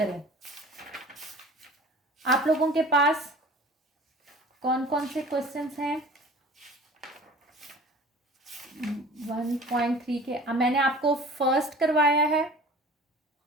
आप लोगों के पास कौन कौन से क्वेश्चंस हैं 1.3 के? मैंने आपको फर्स्ट करवाया है,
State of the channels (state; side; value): normal; both; correlation 0.43